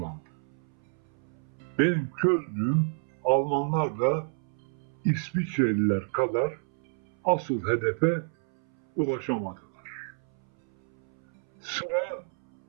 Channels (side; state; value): left; silent; 58 dB below the other